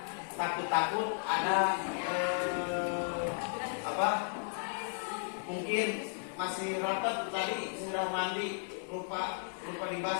Takut-takut ada mungkin masih rapat tadi sudah mandi lupa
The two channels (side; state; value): right; silent; digital silence